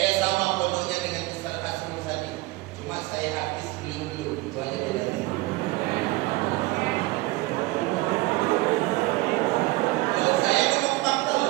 sama pondoknya dengan Ustaz Asrul Sadi. Cuma saya habis belum. Itu aja bedanya. Saya ngomong fakta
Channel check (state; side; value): quieter; left; 20.6 dB